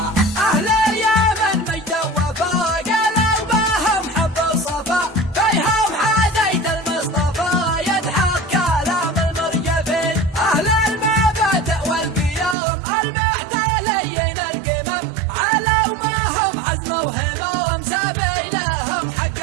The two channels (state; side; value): drops out; left; at 12.6 s